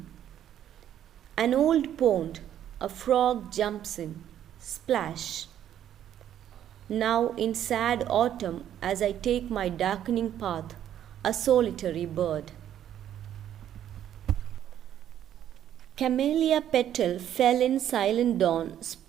An old pond, a frog jumps in, splash. Now in sad autumn, as I take my darkening path, a solitary bird. Camellia petal fell in silent dawn,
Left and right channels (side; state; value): left; quieter; 10.7 dB